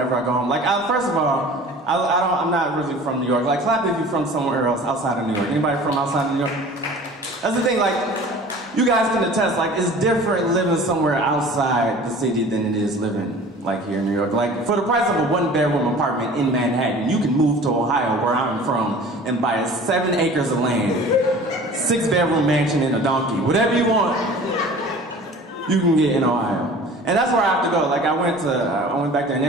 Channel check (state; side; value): normal; both; correlation 0.43